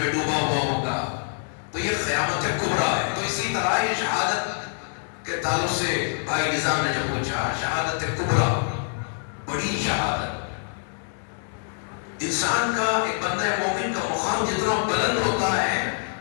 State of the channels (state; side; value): silent; right; digital silence